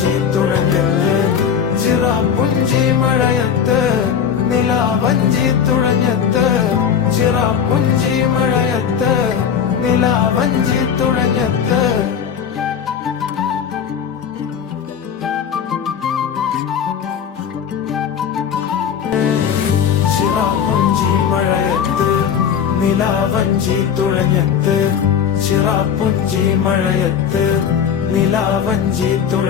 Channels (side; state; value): right; quieter; 7.7 dB